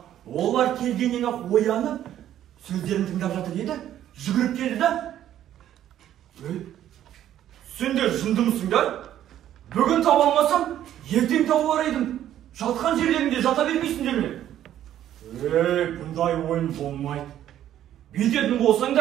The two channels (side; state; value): left; quieter; 11.5 dB